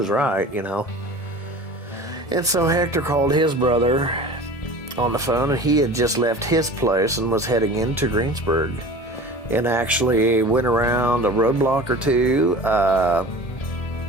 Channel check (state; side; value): late; right; 1.7 ms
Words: right, you know. And so Hector called his brother on the phone, and he had just left his place and was heading into Greensburg, and actually went around a roadblock or two.